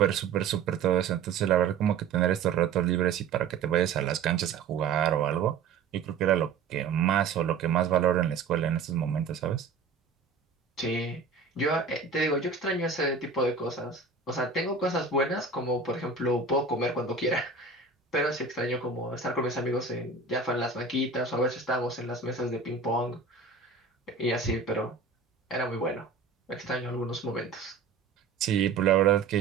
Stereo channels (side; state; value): left; quieter; 5.2 dB